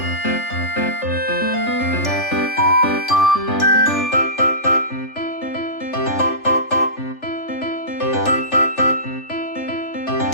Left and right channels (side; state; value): right; late; 3.4 ms